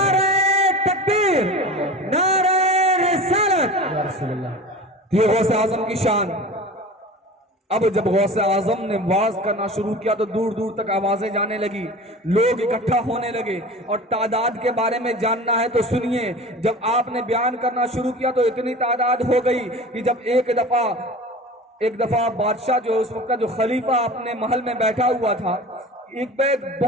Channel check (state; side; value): normal; both; correlation 0.36